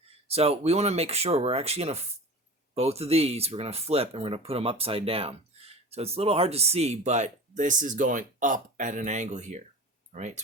so we want to make sure we're actually going to both of these we're going to flip and we're going to put them upside down. So it's a little hard to see, but this is going up at an angle here. All right,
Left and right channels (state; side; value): normal; both; correlation 0.35